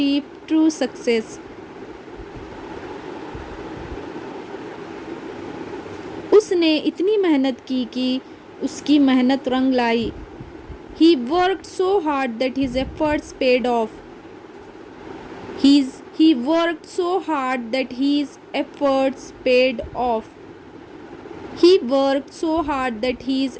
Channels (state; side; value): identical; both; correlation 1.00